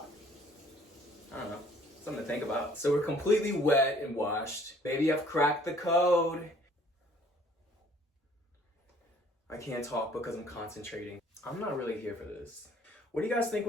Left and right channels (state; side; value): normal; both; correlation 0.58